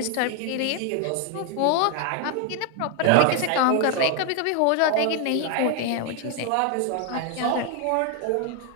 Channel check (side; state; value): both; different; correlation 0.01